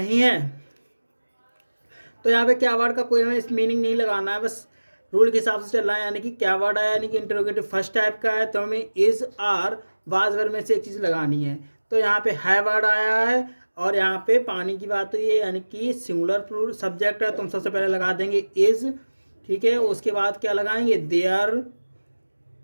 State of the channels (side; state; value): both; inverted; correlation -1.00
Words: है। तो यहाँ पे क्या वर्ड का कोई हमें मीनिंग नहीं लगाना है, बस रूल के हिसाब से चल रहा है, यानी कि क्या वर्ड आया, यानी कि इंटरोगेटिव फर्स्ट टाइप का है तो हमें इज आर वाज वर्ड में से एक चीज़ लगानी है। तो यहाँ पे है वर्ड आया है और यहाँ पे पानी की बात हुई है, यानी कि सिंगुलर प्लूरल सब्जेक्ट है तो हम सबसे पहले लगा देंगे इज, ठीक है। उसके बाद क्या लगाएंगे, देयर।